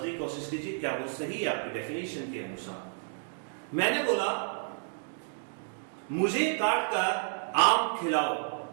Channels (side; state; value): left; silent; 57 dB below the other